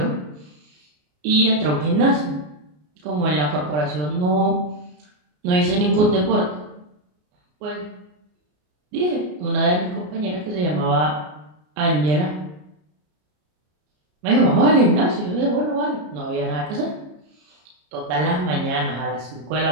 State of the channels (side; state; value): left; late; 33 ms